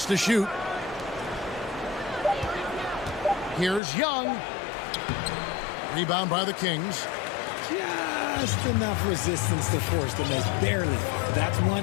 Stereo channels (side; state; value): right; drops out; at 3.8 s